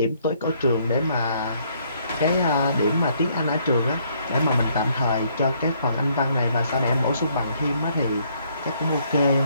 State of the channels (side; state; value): both; inverted; correlation -0.68